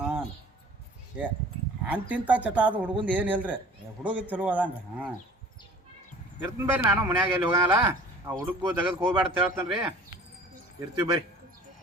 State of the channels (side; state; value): both; normal; correlation 0.47